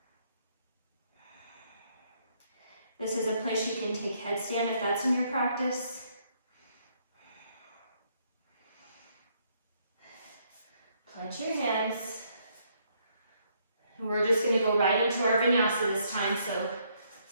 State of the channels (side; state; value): both; inverted; correlation -0.71